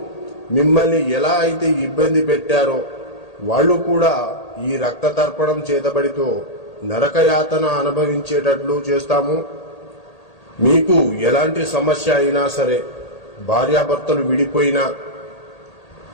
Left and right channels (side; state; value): right; late; 1.8 ms